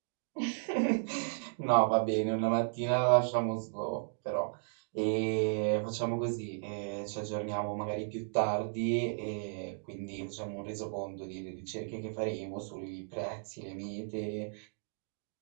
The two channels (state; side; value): silent; left; digital silence